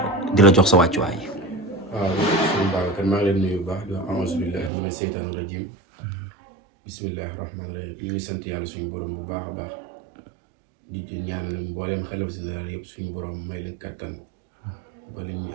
di la jox sa wàccuwaay. waaw sëñ Babacar maa ngi leen nuyu bu baax di wax auzu billaahi mina seytaani rajiim bismillahi rahmaani rahim ñu ngi sant yàlla suñu borom bu baax a baax di ñaanal mbooleem xelaf général yëpp suñu borom may leen kattan ba li ñu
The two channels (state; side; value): drops out; left; at 4.7 s